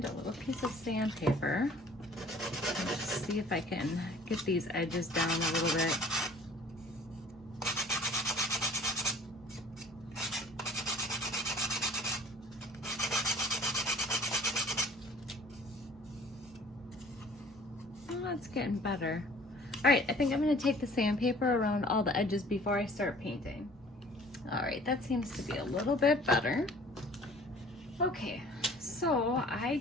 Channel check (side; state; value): both; normal; correlation 0.50